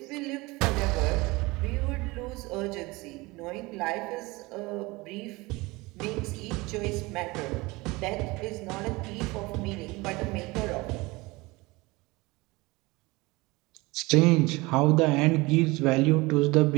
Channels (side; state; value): left; quieter; 22.8 dB